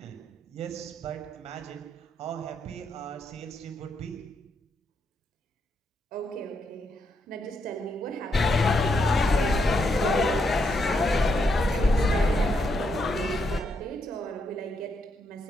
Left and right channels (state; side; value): normal; both; correlation 0.79